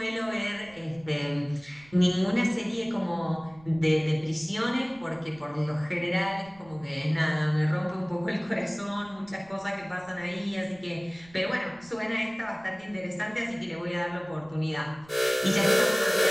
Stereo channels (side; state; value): right; noise; rumble, 25 dB below the sound